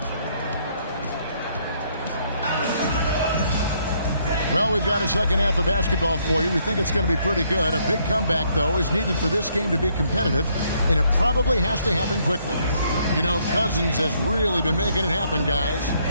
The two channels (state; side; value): inverted; both; correlation -0.70